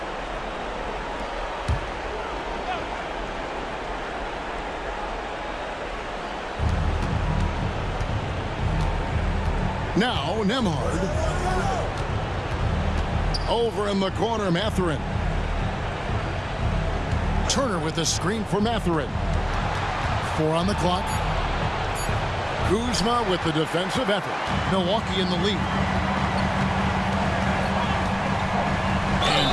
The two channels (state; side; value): identical; both; correlation 1.00